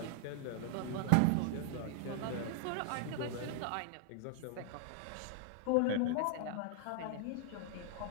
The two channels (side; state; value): both; different; correlation 0.00